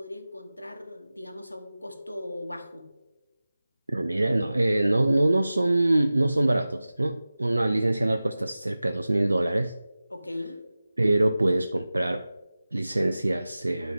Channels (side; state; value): both; inverted; correlation -0.96